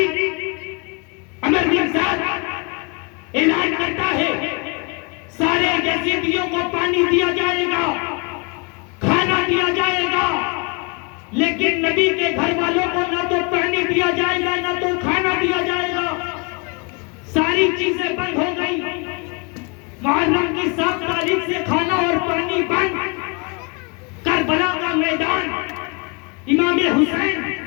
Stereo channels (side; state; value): right; quieter; 32.5 dB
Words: عمر بن سعد اعلان کرتا ہے سارے یزیدیوں کو پانی دیا جائے گا, کھانا دیا جائے گا, لیکن نبی کے گھر والوں کو نہ تو پانی دیا جائے گا نہ تو کھانا دیا جائے گا. ساری چیزیں بند ہو گئی. محرم کی 7 تاریخ سے کھانا اور پانی بند، کربلا کا میدان، امام حسین